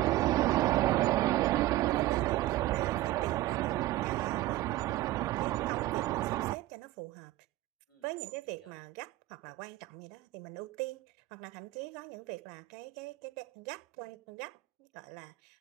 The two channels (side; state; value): left; quieter; 16.6 dB